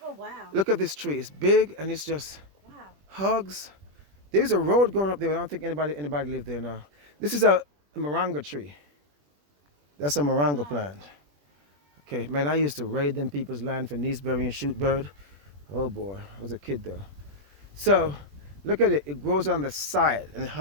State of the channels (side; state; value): left; late; 21 ms